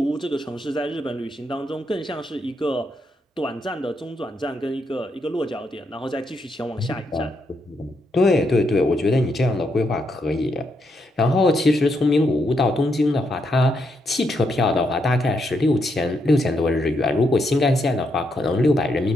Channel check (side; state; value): both; normal; correlation 0.79